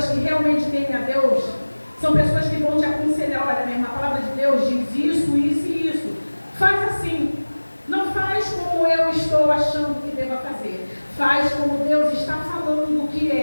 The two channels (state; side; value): inverted; both; correlation -1.00